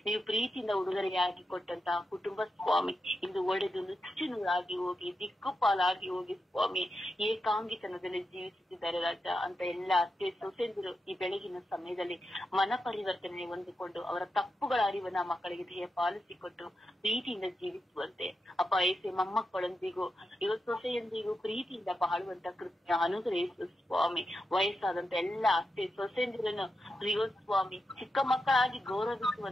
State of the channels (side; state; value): both; normal; correlation 0.88